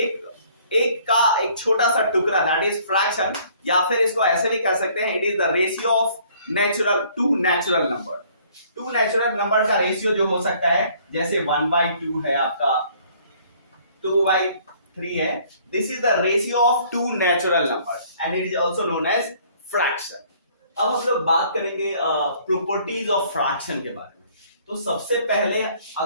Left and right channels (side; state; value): both; inverted; correlation -0.59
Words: छोटा सा टुकड़ा, दैट इज फ्रैक्शन। या फिर इसको ऐसे भी कह सकते हैं, it is the ratio of two natural number. Two natural number का रेशियो जो हो सकता है, जैसे 1/2 है आपका, 2/3 है। This is the ratio of two natural number and it is also known as fraction. अब हम लोग बात करेंगे प्रॉपर्टीज ऑफ फ्रैक्शन के बारे में। तो सबसे पहले